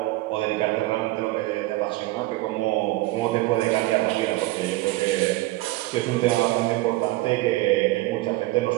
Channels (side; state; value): left; quieter; 18.8 dB